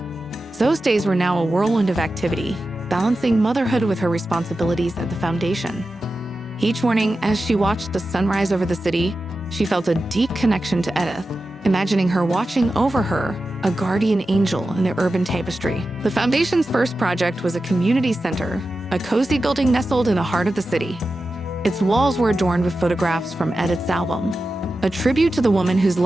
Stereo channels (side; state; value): both; normal; correlation 0.92